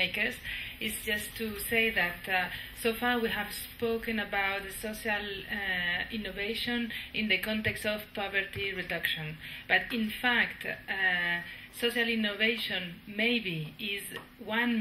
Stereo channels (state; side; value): identical; both; correlation 1.00